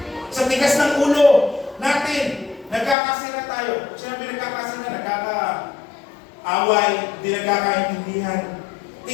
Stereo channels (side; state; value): right; drops out; at 3.0 s